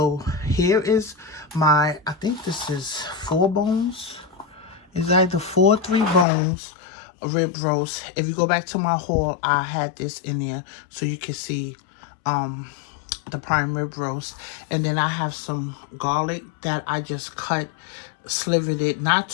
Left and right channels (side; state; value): right; drops out; at 6.2 s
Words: here is I think this is 4 bones. It's either 4 or 3 bones rib roast. If you go back to my haul, I had this in there so you can see the prime rib roast. And then I have some garlic that I just slivered it, not